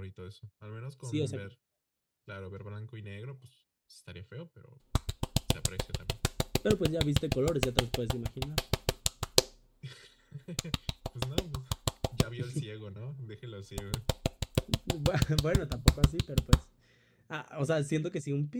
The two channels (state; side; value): identical; both; correlation 1.00